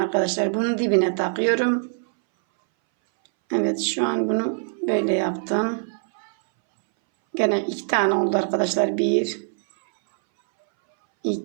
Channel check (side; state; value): left; silent; 62 dB below the other